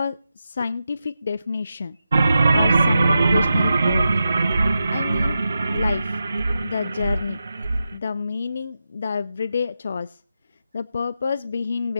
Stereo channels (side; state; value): both; inverted; correlation -0.89